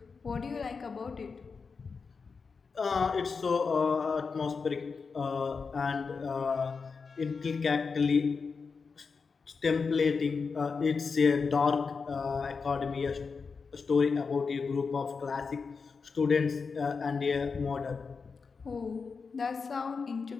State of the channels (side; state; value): right; quieter; 5.0 dB